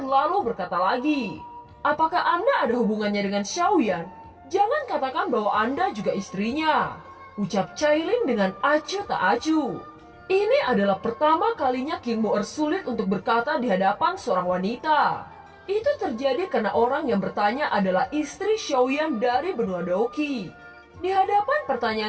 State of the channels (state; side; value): identical; both; correlation 1.00